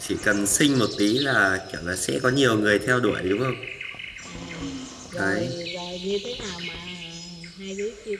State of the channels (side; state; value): both; identical; correlation 1.00